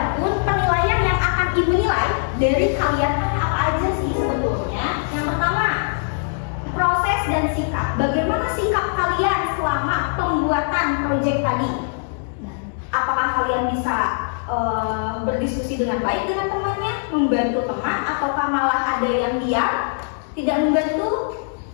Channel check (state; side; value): silent; right; digital silence